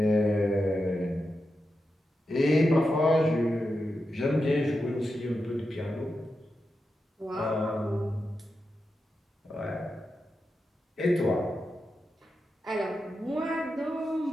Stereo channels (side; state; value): both; normal; correlation 0.89